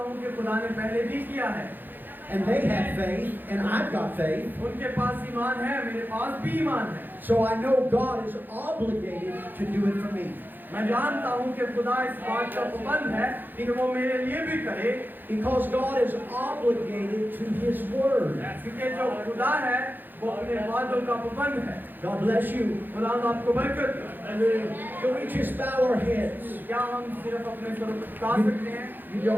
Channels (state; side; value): late; left; 0.090 ms